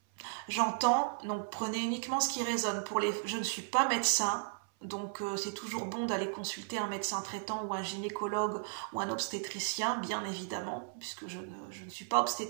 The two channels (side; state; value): left; silent; 54 dB below the other